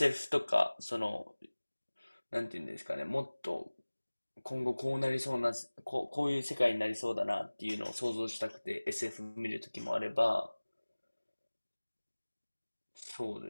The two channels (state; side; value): inverted; both; correlation -1.00